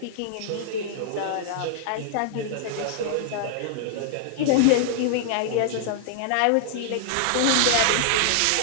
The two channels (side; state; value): both; different; correlation -0.01